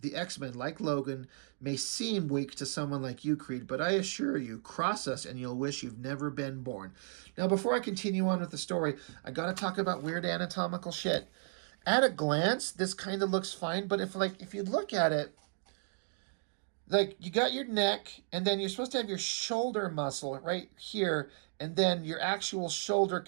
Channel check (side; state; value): left; silent; digital silence